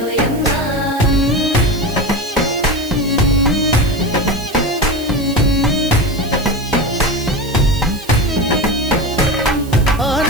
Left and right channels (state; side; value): noise; right; hiss, 18 dB below the sound